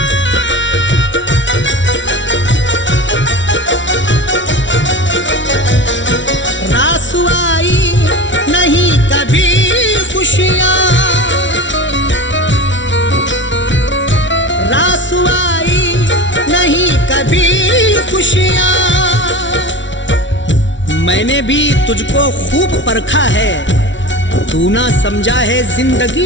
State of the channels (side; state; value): right; late; 0.55 ms